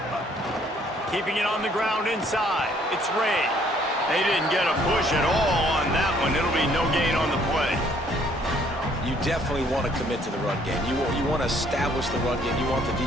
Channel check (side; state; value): both; normal; correlation 0.63